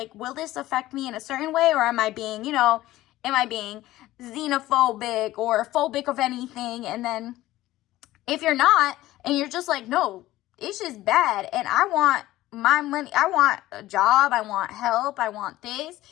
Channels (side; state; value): right; quieter; 16.1 dB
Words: will this affect me in a certain way? Or am I being, you know, xenophobic or phobic of anything? And then if you're not, and you're just like, no, it's just bad, and I want my money, I want a job, I want help, I want this,